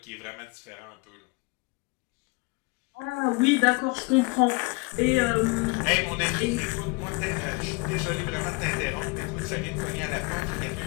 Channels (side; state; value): right; quieter; 28.2 dB